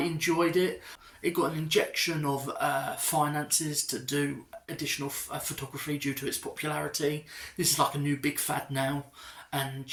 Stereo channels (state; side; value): identical; both; correlation 1.00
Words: it. It got an injection of finances to do additional photography due to its popularity. This is like a new big fad now, and